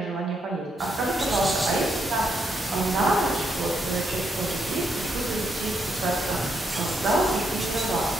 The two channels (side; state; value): both; normal; correlation 0.78